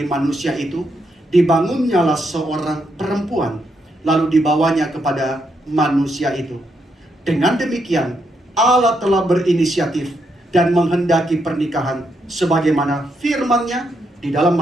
manusia itu, dibangunnyalah seorang perempuan, lalu dibawanya kepada manusia itu. Dengan demikian, Allah telah berinisiatif dan menghendaki pernikahan sebagaimana firman-Nya di dalam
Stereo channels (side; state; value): both; normal; correlation 0.79